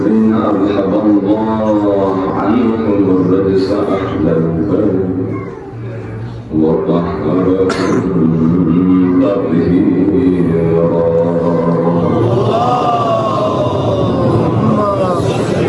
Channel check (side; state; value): both; identical; correlation 1.00